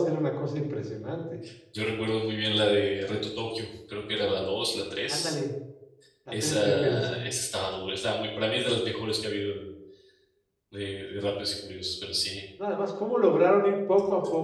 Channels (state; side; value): identical; both; correlation 1.00